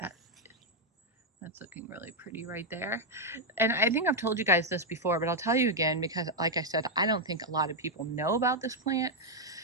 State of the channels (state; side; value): normal; both; correlation -0.01